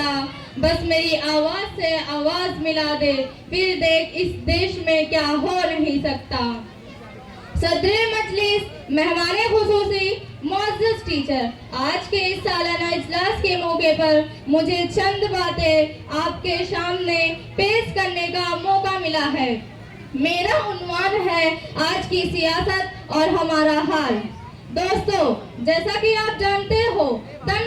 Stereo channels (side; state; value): both; identical; correlation 1.00